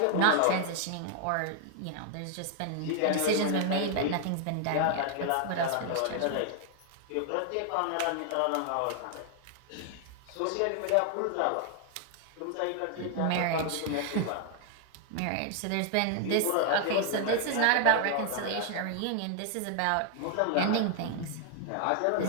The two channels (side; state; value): both; different; correlation 0.00